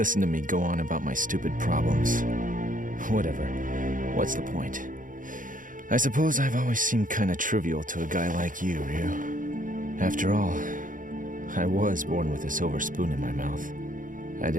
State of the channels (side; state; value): left; late; 0.39 ms